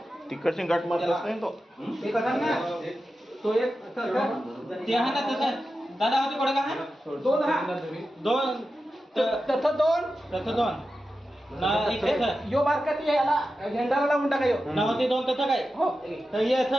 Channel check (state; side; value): normal; both; correlation 0.92